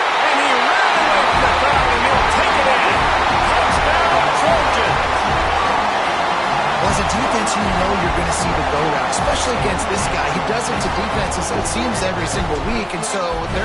And he ran away from the crowd, and he'll take it in. Touchdown, Trojans. Well, as a defense, you know you're going to see the go route, especially against this guy. He does it to defenses, it seems, every single week, and so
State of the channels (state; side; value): identical; both; correlation 1.00